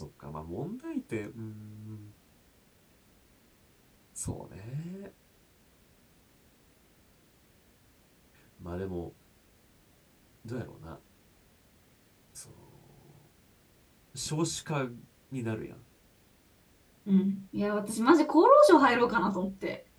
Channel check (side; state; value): both; identical; correlation 1.00